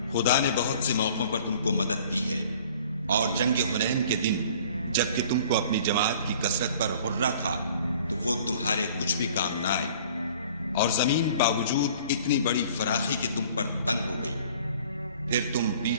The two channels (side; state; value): both; inverted; correlation -0.51